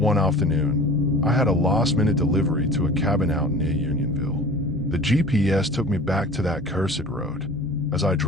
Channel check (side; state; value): both; normal; correlation 0.41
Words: afternoon, I had a last-minute delivery to a cabin out near Unionville. The GPS took me back to that cursed road. As I